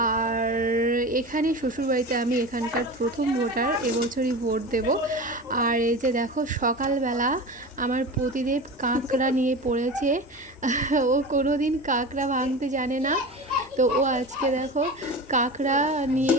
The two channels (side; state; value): both; normal; correlation 0.30